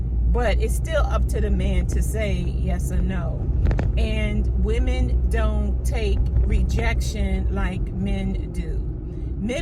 but it's still up to the man to say yes or no. And women don't take rejection like men do.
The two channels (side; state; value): both; identical; correlation 1.00